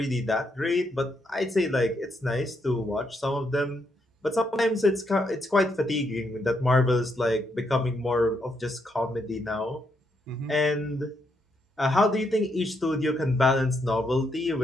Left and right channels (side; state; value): both; normal; correlation 0.78